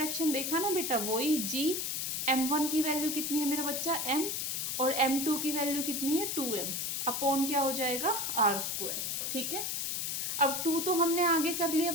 देखा ना बेटा, वही g, m1 की वैल्यू कितनी है मेरा बच्चा? m, और m2 की वैल्यू कितनी है? 2m अपॉन क्या हो जाएगा? r². ठीक है, अब 2 तो हमने आगे कर लिया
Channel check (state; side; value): noise; left; hiss, 1 dB below the sound